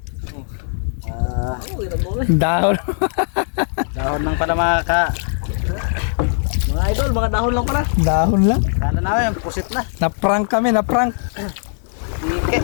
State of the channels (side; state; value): right; silent; 66 dB below the other